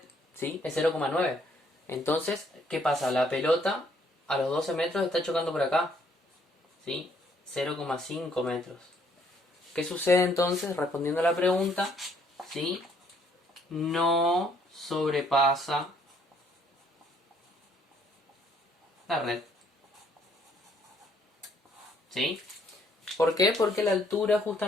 ¿sí? Es 0,9. Entonces, ¿qué pasa? La pelota a los 12 metros está chocando por acá, ¿sí? 0,5 metros. ¿Qué sucede entonces? Respondiendo a la pregunta, ¿sí? No sobrepasa la red. ¿Sí? ¿Por qué? Porque la altura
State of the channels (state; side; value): normal; both; correlation 0.65